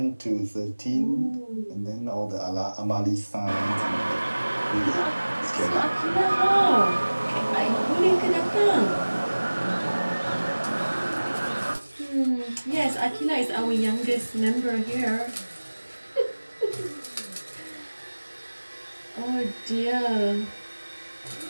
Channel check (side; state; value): both; inverted; correlation -1.00